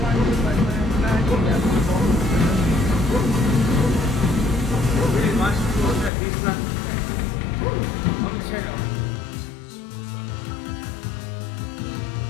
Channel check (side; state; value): right; drops out; at 6.1 s